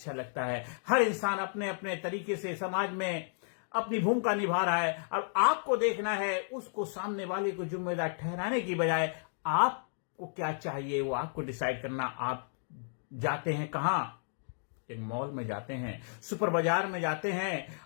लगता है। हर इंसान अपने अपने तरीके से समाज में अपनी भूमिका निभा रहा है और आपको देखना है। उसको सामने वाले को जिम्मेदार ठहराने की बजाय आपको क्या चाहिए वो आपको डिसाइड करना। आप जाते हैं कहां, एक मॉल में जाते हैं, सुपर बाजार में जाते हैं,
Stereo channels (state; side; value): silent; right; digital silence